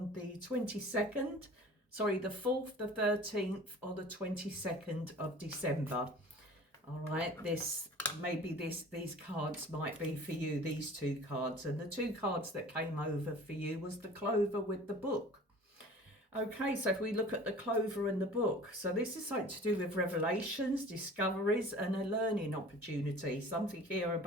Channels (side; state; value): both; normal; correlation 0.44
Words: the 22nd, sorry, the 4th, the 13th, or the 22nd of December, all right, these cards might be for you, these 2 cards. And the 2 cards that came over for you was the Clover with the book. Okay, so if we look at the Clover and the book, so this is something to do with revelations, discoveries, and a learning opportunity. Something here